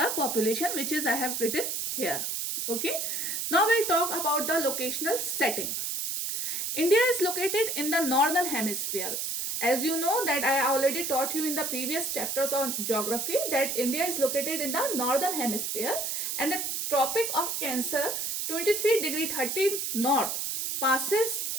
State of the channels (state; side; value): noise; right; hiss, 2 dB below the sound